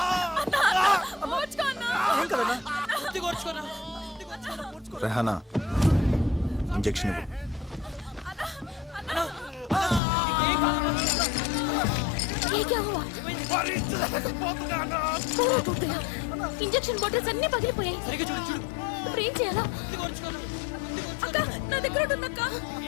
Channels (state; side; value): drops out; right; at 10.0 s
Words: కొద్ది కొరుచుకోనా రెహానా ఇంజెక్షన్ ఇవ్వు. ये क्या हुआ पूरा टूट गया इंजेक्शन बॉटल्स అన్ని పగిలిపోయాయి సరిగ్గా చూడు చూడు ఇప్పుడు ఏం చేయాలా కొద్ది కొరుచుకోనా అక్క నా దగ్గర ఉందక్క.